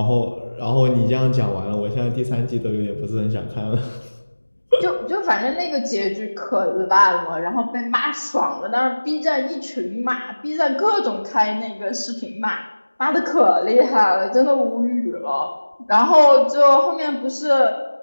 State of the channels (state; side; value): inverted; both; correlation -1.00